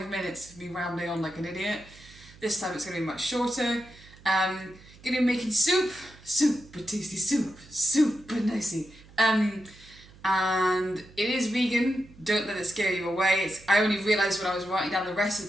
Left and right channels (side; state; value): right; noise; hum, 23 dB below the sound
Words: minutes of me rambling on like an idiot. This time it's going to be much shorter. Going to be making soup, super tasty soup, super nicey. And it is vegan. Don't let it scare you away. I only realised when I was writing down the